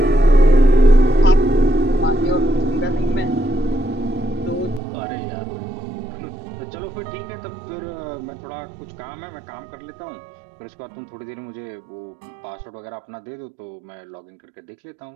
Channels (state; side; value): drops out; left; at 4.8 s